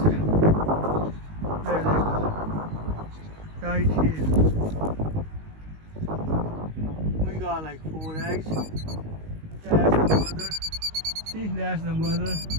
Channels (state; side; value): late; left; 19 ms